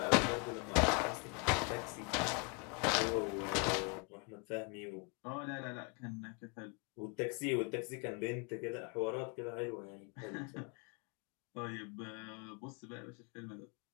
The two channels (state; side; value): quieter; right; 33.7 dB